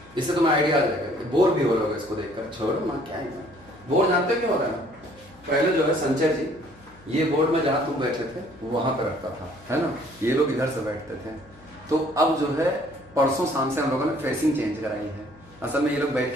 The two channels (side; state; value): left; noise; hum, 26 dB below the sound